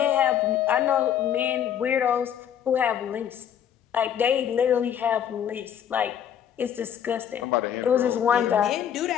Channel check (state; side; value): quieter; right; 9.4 dB